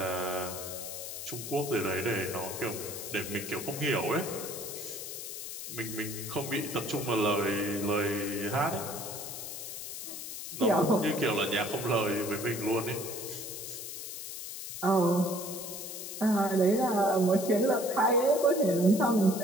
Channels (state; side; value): noise; left; hiss, 8 dB below the sound